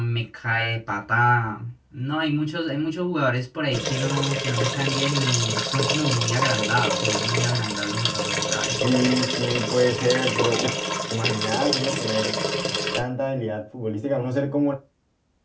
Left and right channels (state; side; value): identical; both; correlation 1.00